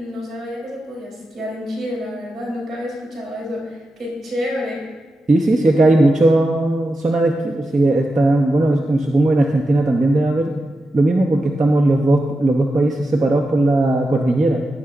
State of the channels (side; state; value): both; normal; correlation 0.90